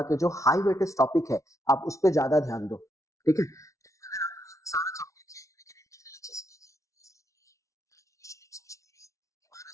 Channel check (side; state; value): right; late; 0.15 ms